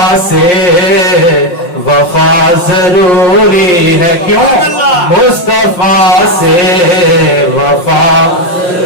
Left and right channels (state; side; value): late; right; 5.6 ms